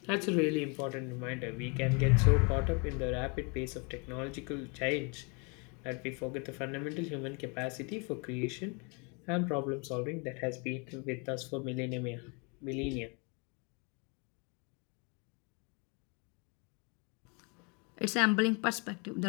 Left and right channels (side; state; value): right; quieter; 32.7 dB